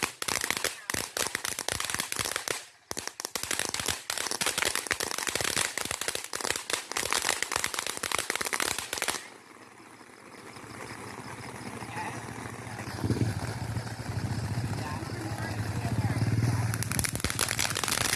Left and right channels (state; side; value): identical; both; correlation 1.00